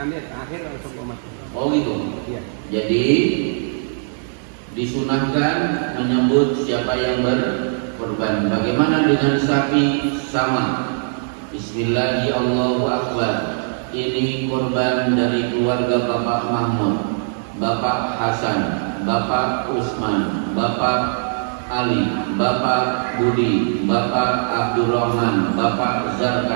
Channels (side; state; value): left; silent; digital silence